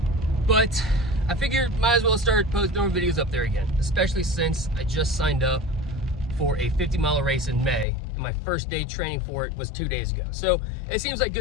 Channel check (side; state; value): right; drops out; at 7.9 s